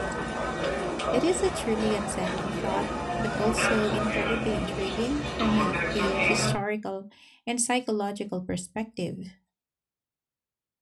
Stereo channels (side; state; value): both; identical; correlation 1.00